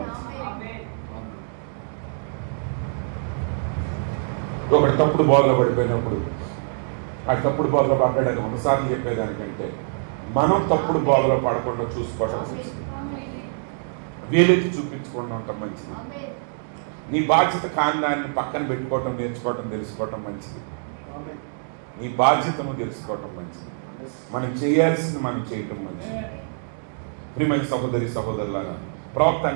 మంచిది. ఒకటి తప్పుడు బోధలో పడిపోయినప్పుడు ఆ తప్పుడు బోధలో పడ్డాడని ఒకసారి చెప్పేదానికంటే మనం తప్పుడు బోధలో పడకుండా చూసుకోవటం మంచిది. వేలెత్తి చూపించకుండా ఉండటం మంచిది. నీ బాధ్యత కాని దాన్ని పక్కన పెట్టుకోవటం నేర్చుకోవటం తెలుసుకోవటం మంచిది. నీ బాధ్యతను తెలుసుకోవటం మంచిది. మనం చేయాల్సింది మనం చేయటం మంచిది. ప్రియమైన సహోదరి సహోదరులారా, ప్రవక్త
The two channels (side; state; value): left; silent; digital silence